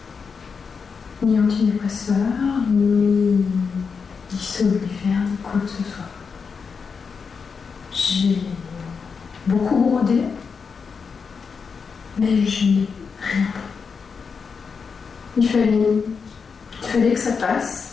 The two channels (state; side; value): quieter; right; 5.6 dB